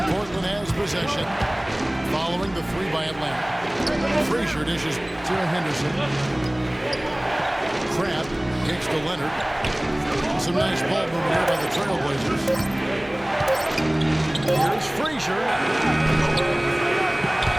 Portland has possession following the three by Atlanta. Frazier dishes to Henderson. Crab kicks to Leonard. Some nice ball movement here by the Trailblazers. Here's Frazier.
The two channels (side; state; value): right; noise; hum, 22 dB below the sound